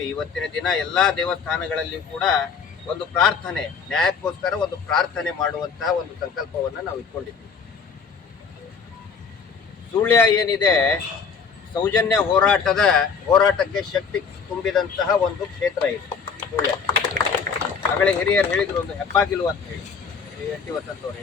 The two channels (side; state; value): right; quieter; 5.7 dB